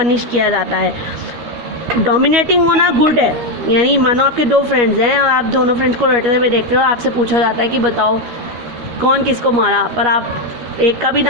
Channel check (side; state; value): left; late; 13 ms